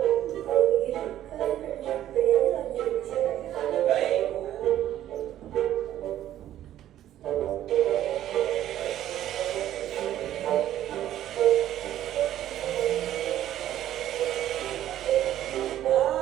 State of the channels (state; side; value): quieter; left; 12.3 dB